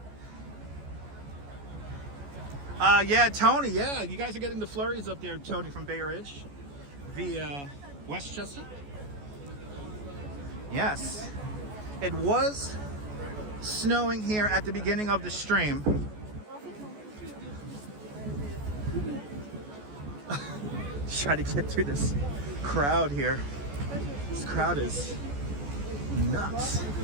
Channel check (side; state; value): left; late; 14 ms